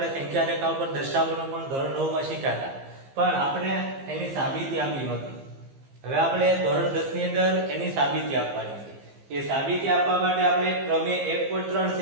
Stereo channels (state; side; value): late; left; 15 ms